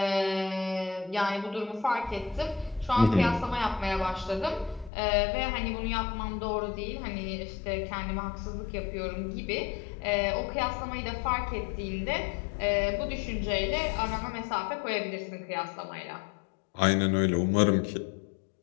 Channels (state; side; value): drops out; right; at 4.9 s